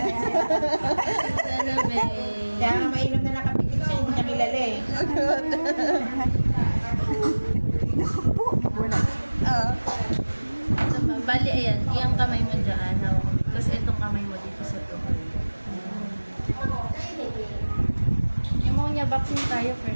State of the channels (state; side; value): inverted; both; correlation -1.00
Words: siya. Kaya nga mainom na nakapikit siya, hindi niya kilala eh. Bali, ayan. Iyang kamay mo dyan. Hawak mo. Tapos itong kamay mo dito sa tuhod. Yung mga niya, vaccine tayo